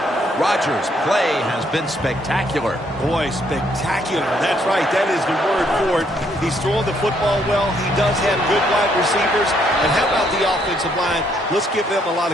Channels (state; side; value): normal; both; correlation 0.70